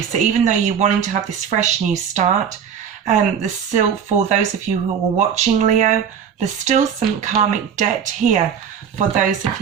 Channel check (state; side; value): quieter; left; 7.8 dB